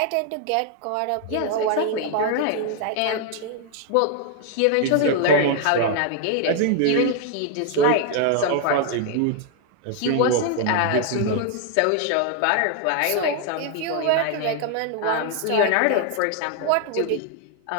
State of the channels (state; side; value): different; both; correlation 0.00